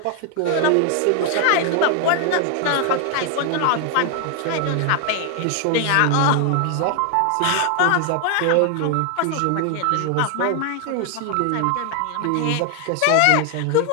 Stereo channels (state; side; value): different; both; correlation 0.00